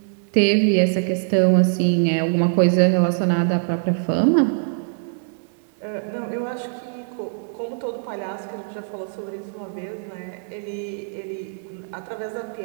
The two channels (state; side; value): silent; left; digital silence